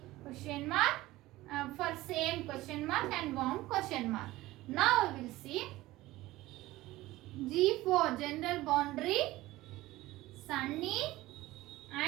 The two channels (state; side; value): quieter; left; 17.7 dB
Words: question mark for same question mark and warm question mark. Now we will see G4 general boundary sunny